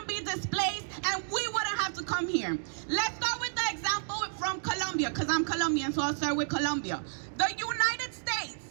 be displaced and we wouldn't have to come here. Let's start with the example from Colombia, because I'm Colombian, so I'll start with Colombia. The United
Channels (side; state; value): left; silent; digital silence